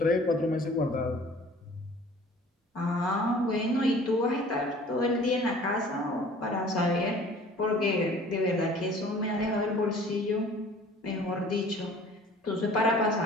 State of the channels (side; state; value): both; normal; correlation 0.49